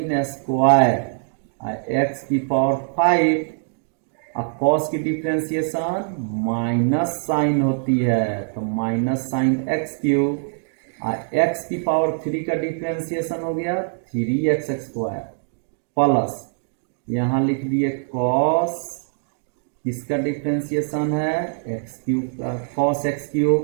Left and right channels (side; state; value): left; silent; digital silence